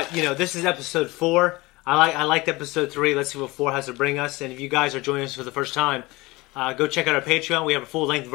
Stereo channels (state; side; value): quieter; right; 22.0 dB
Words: this is episode 4. I liked episode 3. Let's see what 4 has to bring us. And if you guys are joining us for the first time, go check out our Patreon. We have full-length